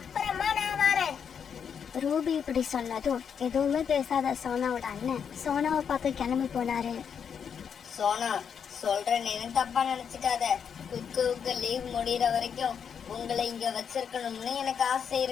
நான் வரேன். ரூபி இப்படி சொன்னதும் எதுவுமே பேசாத சோனாவோட அண்ணன் சோனாவை பார்க்க கிளம்பி போனாரு. சோனா, சொல்றேன், தப்பா நினைச்சுக்காத. குக்குவுக்கு லீவ் முடிகிற வரைக்கும் உங்களை இங்க வச்சிருக்கணும்னு எனக்கு ஆசை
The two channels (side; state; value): right; quieter; 7.3 dB